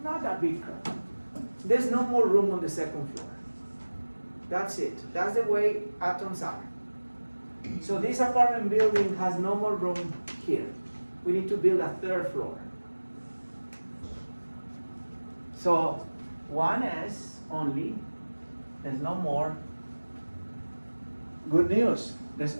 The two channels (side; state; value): both; inverted; correlation -1.00